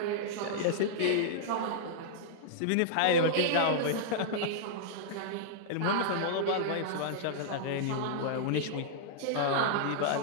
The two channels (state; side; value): different; both; correlation -0.02